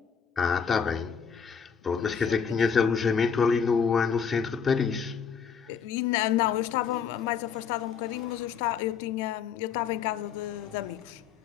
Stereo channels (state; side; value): quieter; right; 6.8 dB